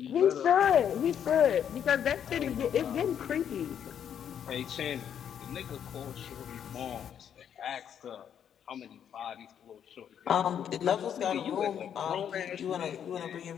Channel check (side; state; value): right; quieter; 8.9 dB